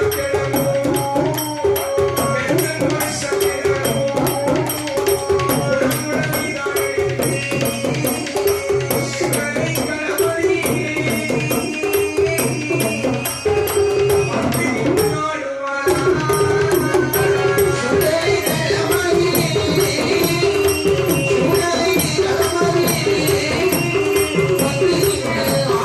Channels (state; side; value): identical; both; correlation 1.00